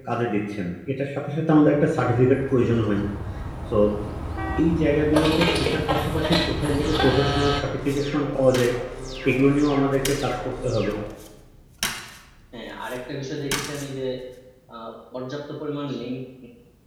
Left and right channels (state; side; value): identical; both; correlation 1.00